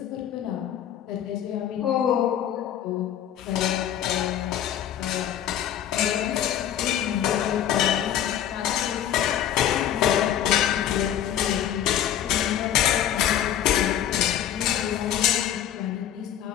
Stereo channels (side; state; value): right; quieter; 10.6 dB